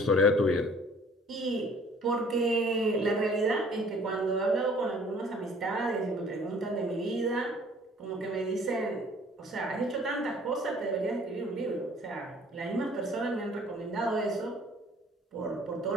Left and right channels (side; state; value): both; normal; correlation 0.54